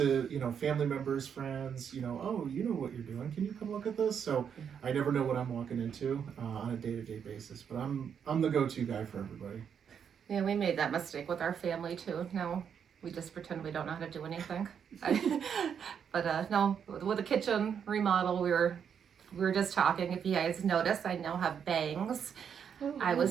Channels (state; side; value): quieter; left; 7.7 dB